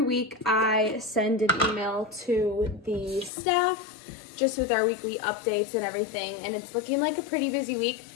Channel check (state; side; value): drops out; right; at 3.3 s